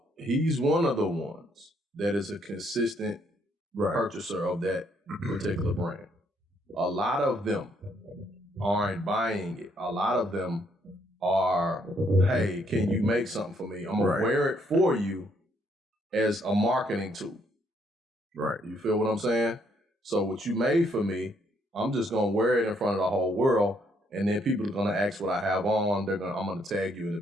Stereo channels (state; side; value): normal; both; correlation 0.70